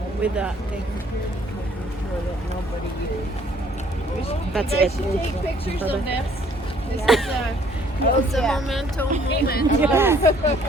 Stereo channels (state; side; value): normal; both; correlation 0.60